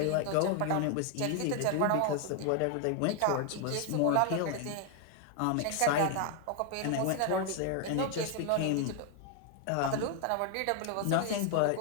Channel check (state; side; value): different; both; correlation 0.00